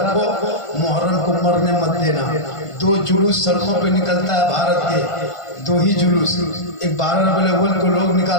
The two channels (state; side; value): late; right; 1.5 ms